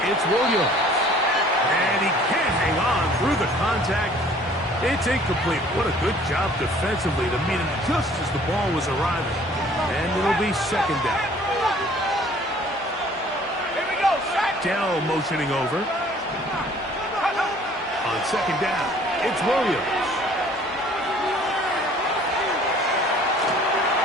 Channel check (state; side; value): normal; both; correlation 0.54